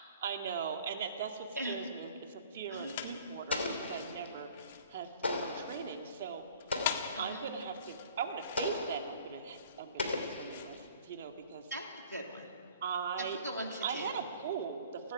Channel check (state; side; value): inverted; both; correlation -0.51